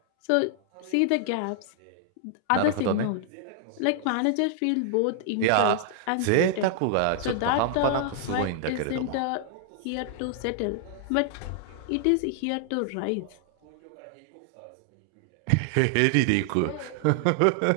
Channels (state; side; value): different; both; correlation 0.00